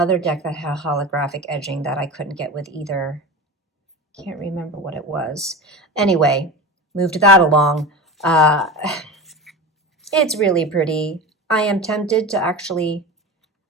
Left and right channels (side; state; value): both; normal; correlation 0.28